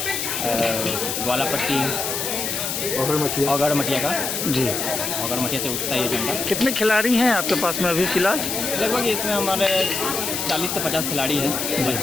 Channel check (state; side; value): noise; left; hiss, 2 dB below the sound